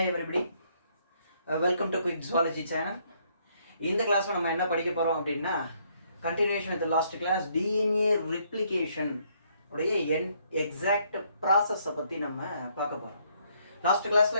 everybody, welcome to Quick Zoology channel. இந்த கிளாஸ்ல நம்ம என்ன படிக்க போறோம் அப்படின்னா continuation with the last class DNA replication உடைய exact process பத்தி நம்ம பார்க்க போறோம். லாஸ்ட் கிளாஸ்ல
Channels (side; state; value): both; inverted; correlation -0.70